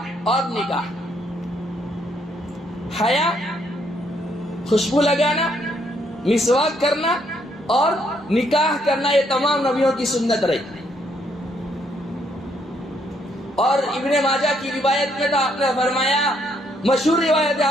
اور نکاح، حیا، خوشبو لگانا، مسواک کرنا اور نکاح کرنا، یہ تمام نبیوں کی سنت رہی۔ اور ابن ماجہ کی روایت میں تو آپ نے فرمایا، مشہور روایت ہے،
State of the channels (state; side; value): normal; both; correlation 0.71